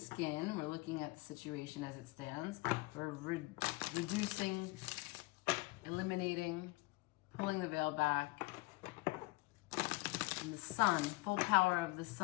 We're looking at the situation as it stands. We're reducing, eliminating, pulling the veil back. And the sun, full power of the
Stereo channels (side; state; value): right; quieter; 23.6 dB